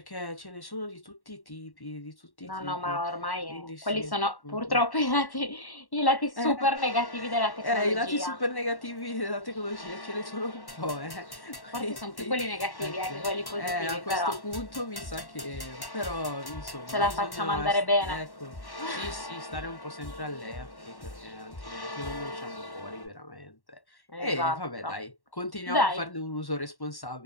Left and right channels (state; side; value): late; right; 1.1 ms